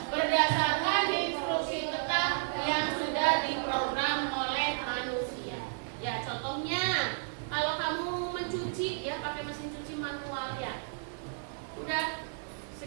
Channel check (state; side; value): silent; left; digital silence